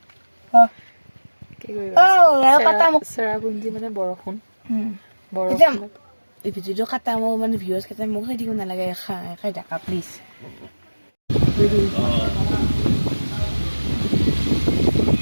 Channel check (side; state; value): both; inverted; correlation -1.00